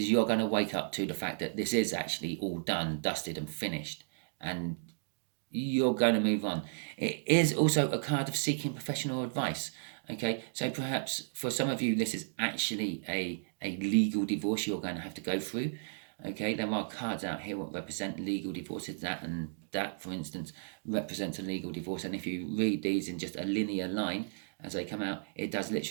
you're going to wake up to the fact that this is actually all done, dusted, and finished, and you're going to move on. It is also a card of seeking professional advice. Okay, so perhaps for some of you, this is actually a legal divorce you're going to have to go through. Okay, there are cards out here that represent legal divorces, and that, for instance, represents a legal divorce. And if you read these in just a linear line as they come out, it does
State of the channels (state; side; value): silent; left; digital silence